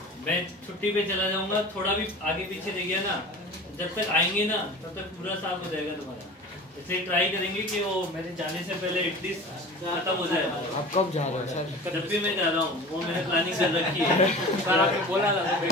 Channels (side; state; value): both; normal; correlation 0.37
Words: मैं छुट्टी पे चला जाऊंगा, थोड़ा भी आगे पीछे रह गया ना, जब तक आएंगे ना तब तक पूरा साफ हो जाएगा तुम्हारा। इसलिए ट्राई करेंगे कि वो मेरे जाने से पहले एटलीस्ट खत्म हो जाए। आप कब जा रहे हो सर? जब भी मैं जा रहा हूँ वो मैंने प्लानिंग कर रखी है। सर आपने बोला था